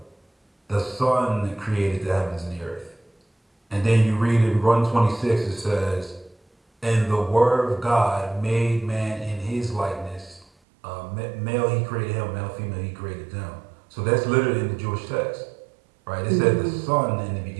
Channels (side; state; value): left; drops out; at 10.5 s